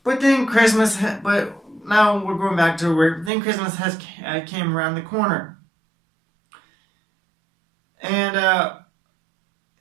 But now we're going back to where then Christmas came around the corner. And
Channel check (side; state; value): left; drops out; at 3.3 s